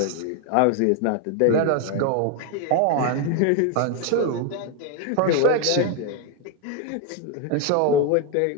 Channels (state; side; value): different; both; correlation 0.01